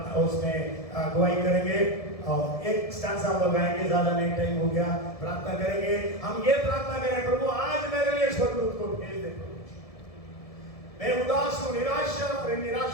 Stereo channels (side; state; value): right; late; 1.7 ms